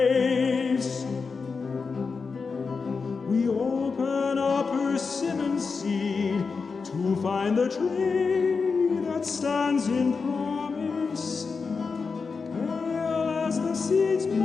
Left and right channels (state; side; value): quieter; right; 4.9 dB